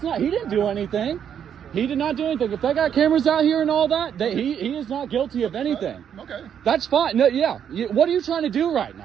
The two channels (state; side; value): quieter; left; 8.6 dB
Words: not. He didn't do anything. He did not do anything. If they got cameras out here and all that, he is not guilty of anything. Okay. That's fine. No, yeah. What are you trying to do right